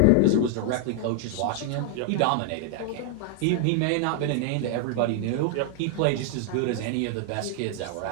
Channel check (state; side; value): different; both; correlation 0.00